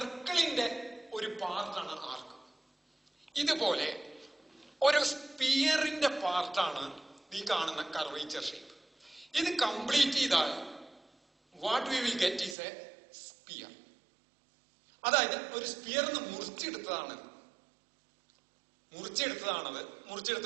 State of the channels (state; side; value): drops out; left; at 12.6 s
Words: ഒരു പാർട്ടാണ് ആർക്ക്. ഇതുപോലെ ഒരു സ്പിയറിന്റെ പാർട്ടാണ് ഈ കാണുന്ന കർവേച്ചർ ഷേപ്പ്. ഇത് കംപ്ലീറ്റ് ചെയ്താൽ what we will get is a sphere. അതായത് ഒരു സ്പിയറിന്ന് മുറിച്ചെടുത്തതാണത്.